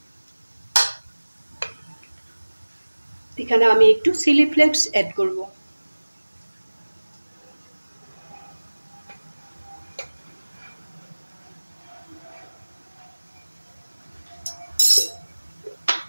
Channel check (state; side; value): inverted; both; correlation -1.00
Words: এখানে আমি একটু চিলি ফ্লেক্স অ্যাড করব।